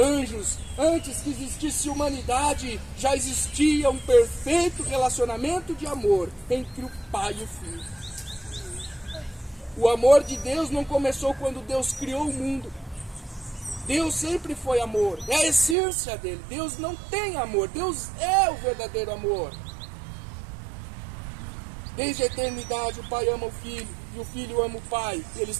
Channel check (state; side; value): drops out; left; at 15.8 s